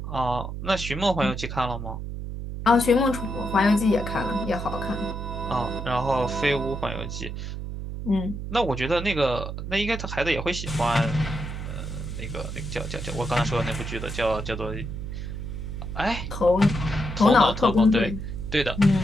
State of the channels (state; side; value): noise; right; hum, 6 dB below the sound